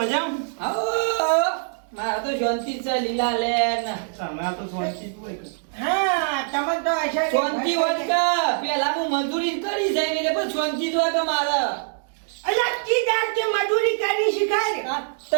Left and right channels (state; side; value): silent; left; digital silence